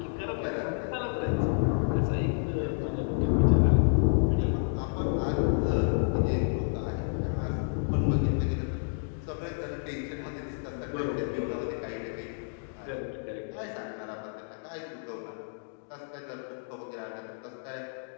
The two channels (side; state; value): right; silent; digital silence